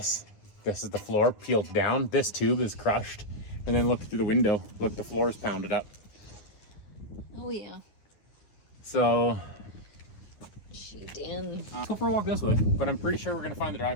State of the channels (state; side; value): late; right; 9.6 ms